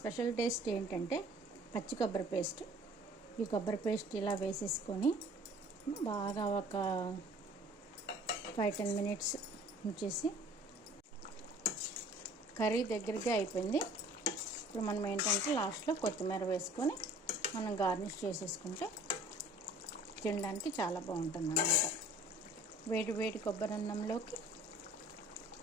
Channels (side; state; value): both; normal; correlation 0.51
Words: టేస్ట్ ఏంటంటే పచ్చి కొబ్బరి పేస్ట్. ఈ కొబ్బరి పేస్ట్ ఇలా వేసేసుకొని బాగా ఒక 5-10 మినిట్స్ ఉంచేసి కర్రీ దగ్గరగా అయిపోయింది. ఇప్పుడు మనం ఏంటంటే లాస్ట్లో కొత్తిమీర వేసుకొని మనం గార్నిష్ చేసేసుకుంటే తినడానికి చాలా బాగుంటుంది అన్నమాట. వేడి వేడి కొబ్బరి అన్నంలోకి